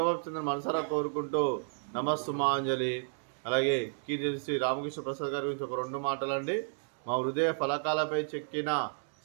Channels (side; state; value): left; silent; digital silence